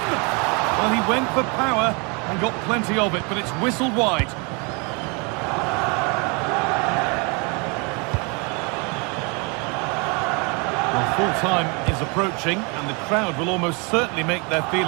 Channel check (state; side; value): quieter; left; 31.6 dB